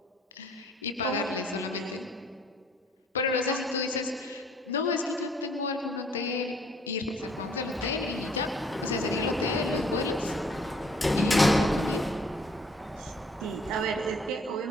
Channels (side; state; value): both; normal; correlation 0.59